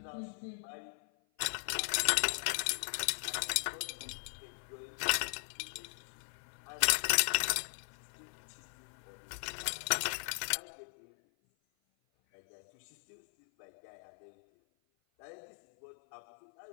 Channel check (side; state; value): right; silent; 52 dB below the other